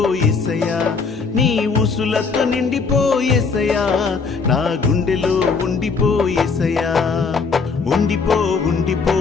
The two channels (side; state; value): right; quieter; 4.9 dB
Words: నీ ఊసులతో నిండిపోయేసయ్యా, నా గుండెలో ఉండిపోయేసయ్యా,